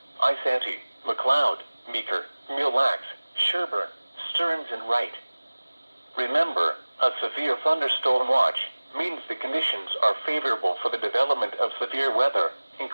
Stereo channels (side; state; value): both; inverted; correlation -1.00